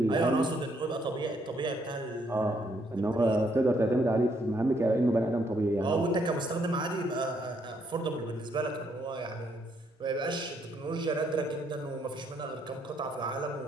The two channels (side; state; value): both; normal; correlation 0.72